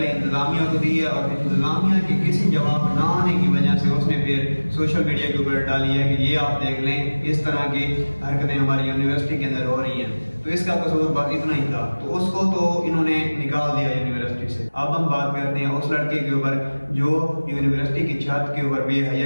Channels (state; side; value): inverted; both; correlation -1.00